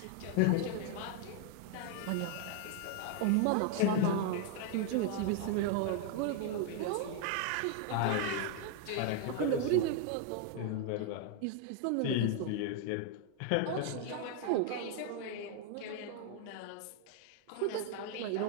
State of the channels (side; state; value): both; different; correlation 0.00